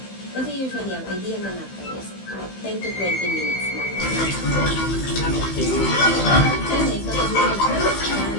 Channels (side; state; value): right; late; 15 ms